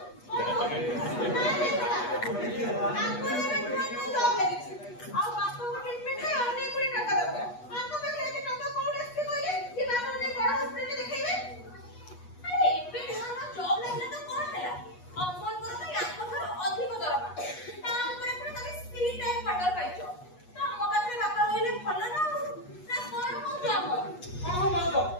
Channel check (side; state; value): right; late; 8.2 ms